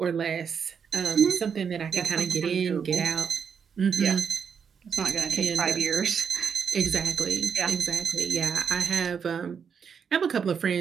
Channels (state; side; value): quieter; left; 6.8 dB